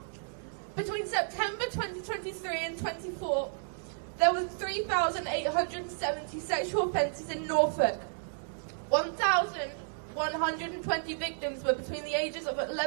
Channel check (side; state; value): left; silent; digital silence